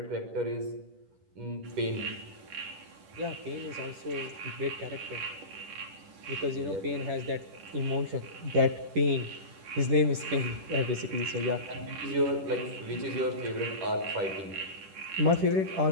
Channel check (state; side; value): late; left; 10 ms